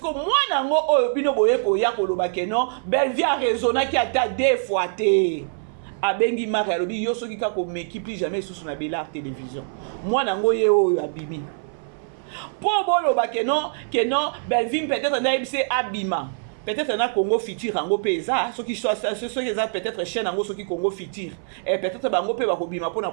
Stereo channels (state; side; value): silent; left; 58 dB below the other